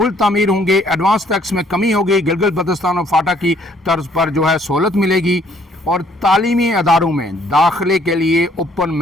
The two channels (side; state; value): both; normal; correlation 0.63